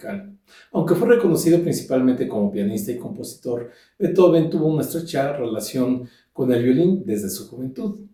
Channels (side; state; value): both; identical; correlation 1.00